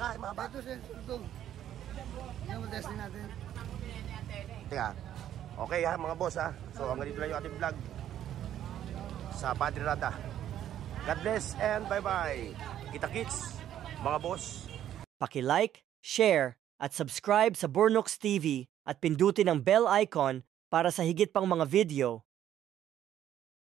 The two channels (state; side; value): quieter; left; 11.1 dB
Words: mahaba. Ito siya, ito. Yan mo testing natin. Teka. Okay, ha, mga boss, ha. So, hanggang dito lang yung ating vlog sa Padre Rada. God bless and bye-bye. Kita-kits, mga boss. Paki-like, share, at subscribe sa Burnooks TV at pindutin ang bell icon para sa higit pang mga video.